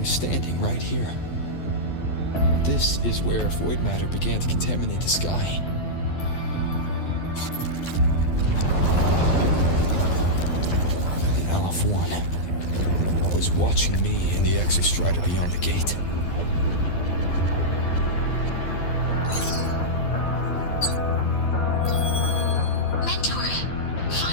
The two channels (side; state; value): right; late; 12 ms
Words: standing right here. This is where void matter began to contaminate the sky. And Aleph 1 was watching me and the Exostrider beyond the gate. Mentor,